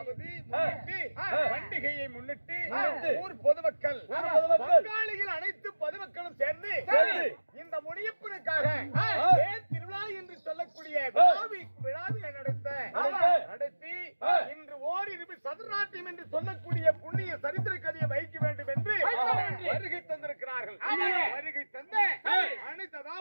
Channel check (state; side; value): inverted; both; correlation -1.00